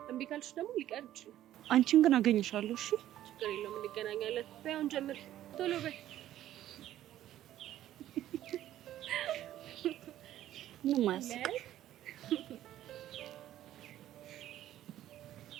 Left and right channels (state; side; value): quieter; left; 12.8 dB